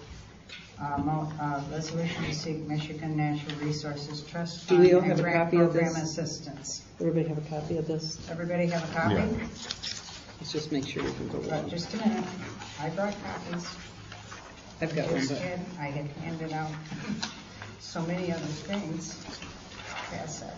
Resolution to seek Michigan Natural Resources Trust Do Fund we all and have a grant copy of program this? assistance. Everybody have a copy of this? Everybody have a copy? Yeah. Let's just make sure you can go along. Just a minute. I brought copies. I've got one, Just but did. I had handed out so many other things. Pass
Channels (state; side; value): identical; both; correlation 1.00